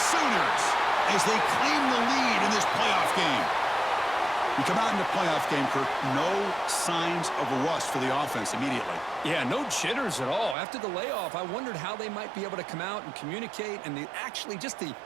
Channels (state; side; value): drops out; left; at 10.6 s